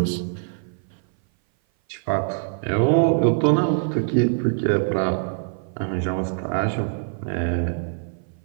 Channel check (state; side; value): silent; left; 57 dB below the other